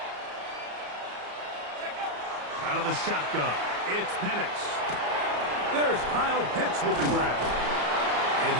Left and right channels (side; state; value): left; late; 34 ms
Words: Check up. Out of the shotgun, it's Penix. There's Kyle Pitts with the grab. And